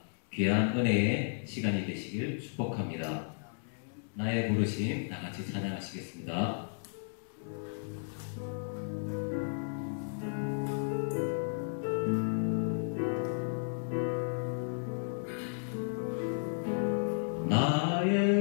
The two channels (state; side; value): silent; right; 55 dB below the other